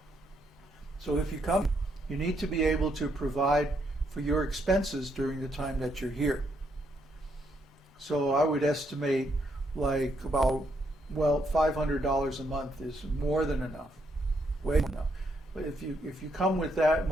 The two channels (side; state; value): both; normal; correlation 0.76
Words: So if you come, you need to be able to provide for your expenses during the time that you're here. So I would estimate like about, well, $500 a month is more than enough, way more than enough. But if you come with that